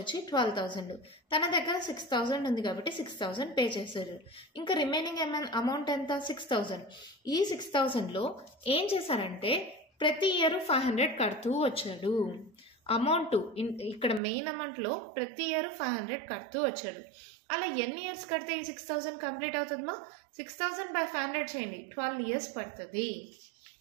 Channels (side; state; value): left; drops out; at 14.2 s